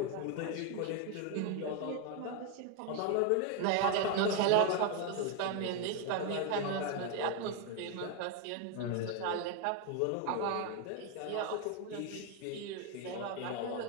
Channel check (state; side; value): different; both; correlation 0.01